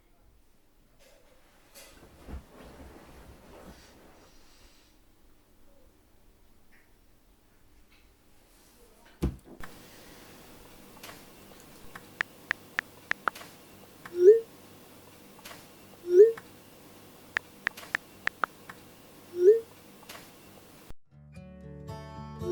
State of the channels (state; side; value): identical; both; correlation 1.00